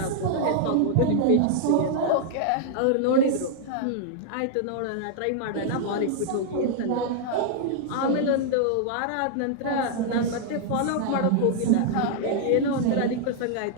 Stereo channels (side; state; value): both; different; correlation -0.01